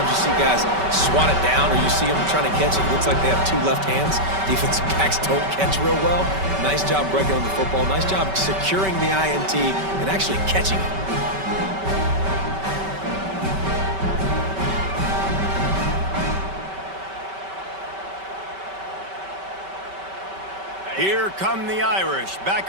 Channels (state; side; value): late; left; 5.2 ms